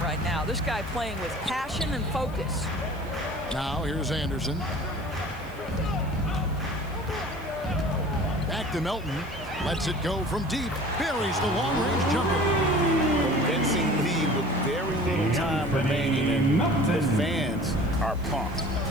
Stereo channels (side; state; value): right; noise; hiss, 25 dB below the sound